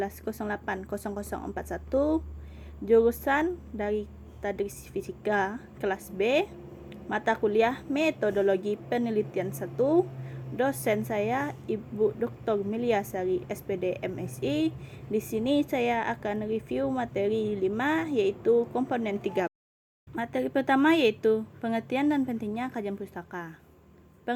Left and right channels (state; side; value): identical; both; correlation 1.00